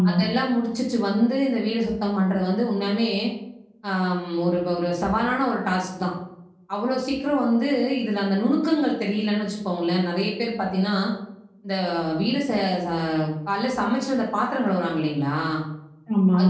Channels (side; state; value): both; identical; correlation 1.00